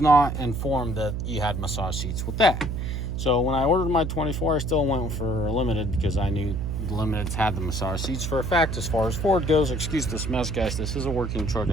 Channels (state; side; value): noise; right; hum, 3 dB below the sound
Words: informed that you had massage seats with that. So when I ordered my 24, I still went for a limited because I knew the limiteds had the massage seats. For a fact, as far as Ford goes, excuse this mess, guys, this is a working truck.